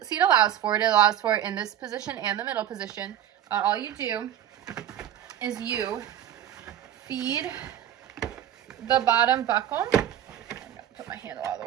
allows for it, in this position and the middle position. all you do is you feed the bottom buckle. I'm gonna put my handle out of the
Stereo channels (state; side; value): quieter; left; 11.0 dB